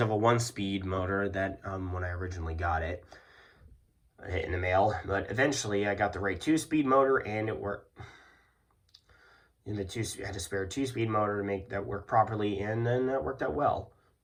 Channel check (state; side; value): identical; both; correlation 1.00